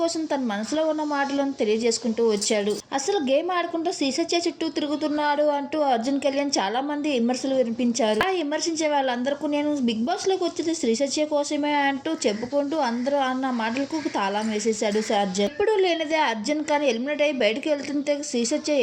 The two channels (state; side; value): identical; both; correlation 1.00